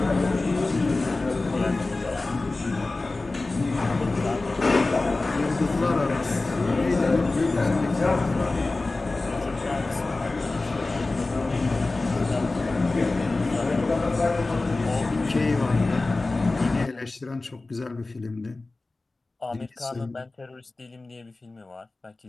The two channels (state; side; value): quieter; right; 3.3 dB